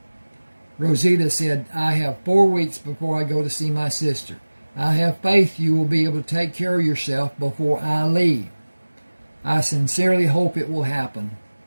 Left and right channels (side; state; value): both; inverted; correlation -1.00